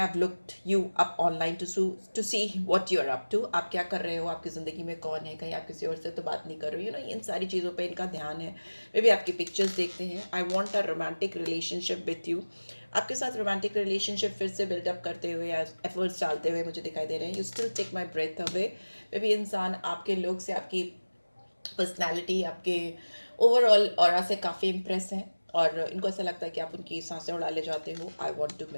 है। I looked you up online to see what you are up to, आप क्या कर रहे हो, आपकी ज़िंदगी में कौन है, कहीं आप किसी और से तो बात नहीं कर रहे हो, इन सारी चीज़ों पे इनका ध्यान है। वे भी आपकी पिक्चर्स देखते हैं। I want a romantic relationship with you, आपके साथ रोमांटिक रिलेशनशिप फिर से बिल्डअप करते हुए या एफर्ट्स डालते हुए मुझे दिखाई दे रहे हैं। You still take my breath away. वे भी इंसान आपके लोग से, आपकी पर्सनैलिटी, आपके ओवरऑल ऑरा से काफ़ी इम्प्रेस हैं और इनको ऐसा लगता है कि आप उनकी सांसें उड़ा ले जाते हो। I want to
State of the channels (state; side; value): inverted; both; correlation -1.00